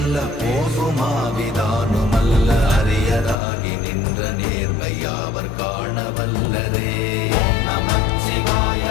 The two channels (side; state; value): right; drops out; at 3.4 s